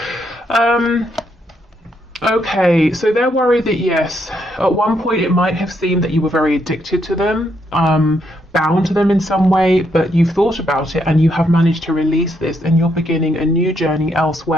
Okay, so they're worried that, yes, at one point it might have seemed that you were very addicted to them, bound to them in some way, but you've thought about it and you have managed to release this, and you're beginning a new journey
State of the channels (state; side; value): normal; both; correlation 0.76